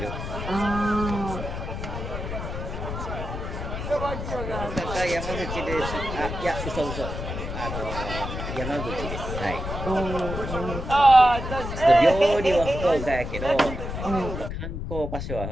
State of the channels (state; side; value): noise; left; rumble, 6 dB below the sound